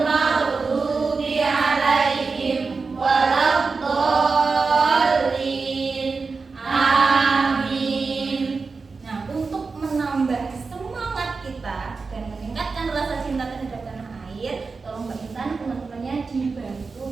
maghdubi 'alaihim waladdallin. Amin. Nah, untuk menambah semangat kita dan meningkatkan rasa cinta terhadap tanah air, tolong Mbak Intan teman-temannya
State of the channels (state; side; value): quieter; left; 4.4 dB